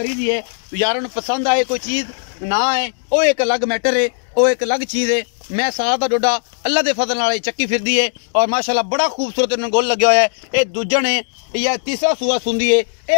दी है यारों पसंद आए कोई चीज़ ना आए वो एक अलग मैटर है वो एक अलग चीज़ है मैं साथ का डोडा अल्लाह के फजल नाल चक्की फिरदी है और माशाल्लाह बड़ा खूबसूरत इन्होंने गोल लगे हुआ है ये दूजण है या तीसरा सूआ सुंदी है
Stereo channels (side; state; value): right; silent; digital silence